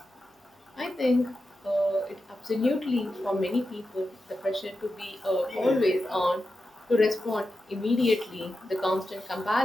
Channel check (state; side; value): normal; both; correlation 0.90